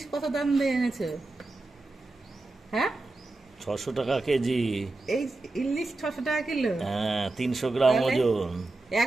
কত দাম দিয়ে এনেছো? হ্যাঁ, 600 টাকা কেজি। এই ইলিশ 600 টাকা কিলো? হ্যাঁ, 300 গ্রাম ওজন।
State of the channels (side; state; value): left; quieter; 3.1 dB